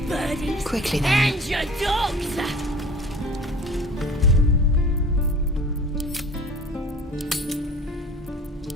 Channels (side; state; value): both; normal; correlation 0.44